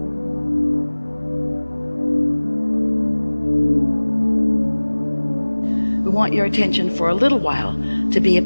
Want your attention for a little while to be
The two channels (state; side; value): inverted; both; correlation -1.00